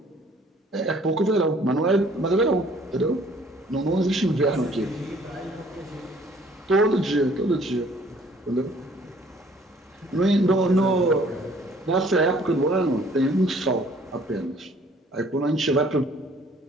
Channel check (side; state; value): both; normal; correlation 0.58